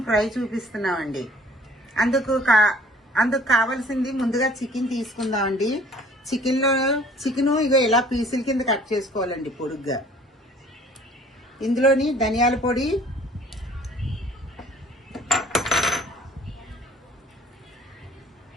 ఫ్రై చూపిస్తున్నామండి. అందుకు కావాల్సింది ముందుగా చికెన్ తీసుకుందామండి. చికెన్ ఇగో ఇలా పీసుల కింద కట్ చేసుకోవాలండి పొడుగ్గా. ఇందులోని ధనియాల పొడి,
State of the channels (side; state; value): both; normal; correlation 0.53